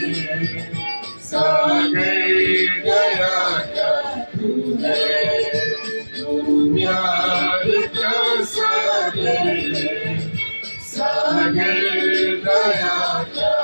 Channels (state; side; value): inverted; both; correlation -1.00